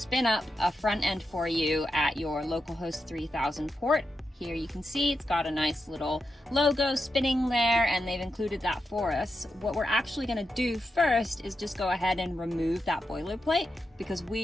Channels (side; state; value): both; normal; correlation 0.88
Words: up a front end for you at your localhost 3000 port. Here you can see it's got a nice little logo spinning there, and they've included that for us. What we're actually going to do first is just go ahead and remove that boilerplate, because